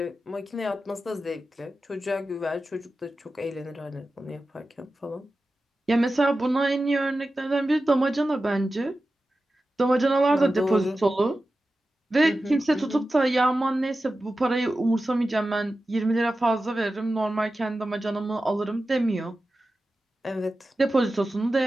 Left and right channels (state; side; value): normal; both; correlation 0.93